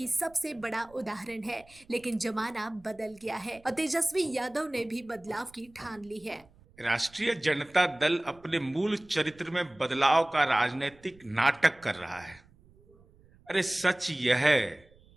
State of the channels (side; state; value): right; noise; rumble, 27 dB below the sound